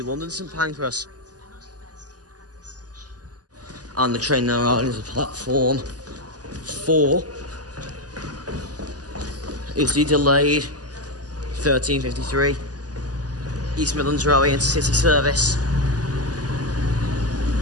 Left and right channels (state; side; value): late; left; 0.68 ms